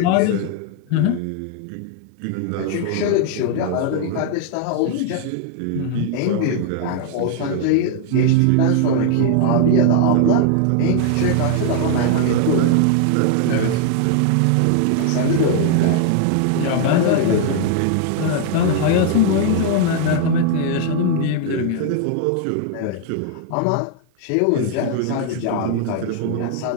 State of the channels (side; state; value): both; different; correlation 0.00